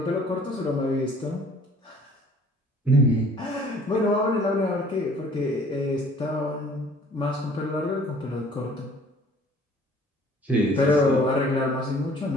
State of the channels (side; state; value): both; normal; correlation 0.53